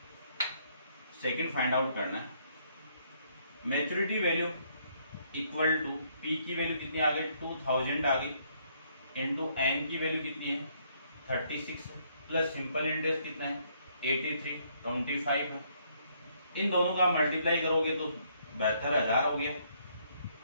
सेकंड फाइंड आउट करना है, maturity value equal to P की वैल्यू कितनी आ गई 2000 आ गई, इंटू N की वैल्यू कितनी है 36 प्लस सिंपल इंटरेस्ट कितना है 8325 है। इन दोनों का मल्टीप्लाई करोगे तो 72,000 हो गया,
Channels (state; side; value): inverted; both; correlation -0.69